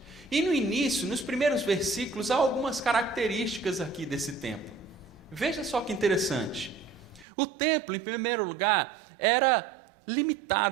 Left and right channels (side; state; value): left; drops out; at 7.2 s